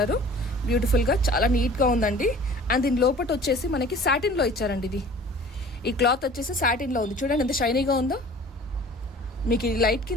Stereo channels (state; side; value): normal; both; correlation 0.46